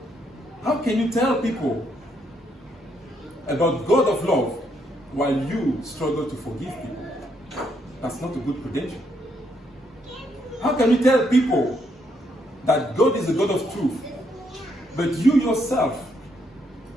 How can you tell people about God of love while you struggle to forgive people? That's not a good credential. How can you tell people that God is a God of truth, but you yourself,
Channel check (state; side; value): normal; both; correlation 0.74